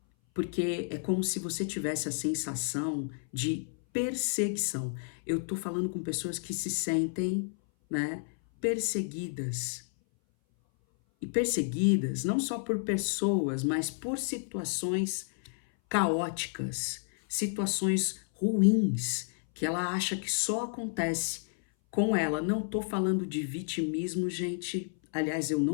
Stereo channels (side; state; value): right; silent; 57 dB below the other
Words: Porque é como se você tivesse a sensação de perseguição. Eu tô falando com pessoas que se sentem, né, perseguidas. E perseguidas não só por pessoas, mas por situações caóticas, situações ruins, que ela acha que só acontece com ela. Não tô falando de vitimismo, gente. Aliás, eu